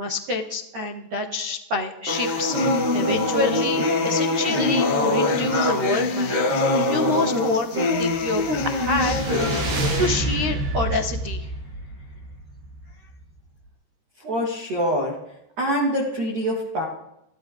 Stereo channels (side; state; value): left; late; 13 ms